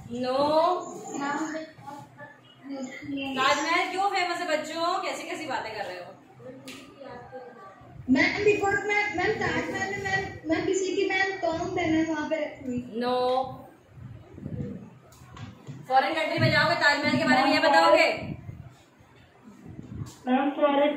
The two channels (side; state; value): both; identical; correlation 1.00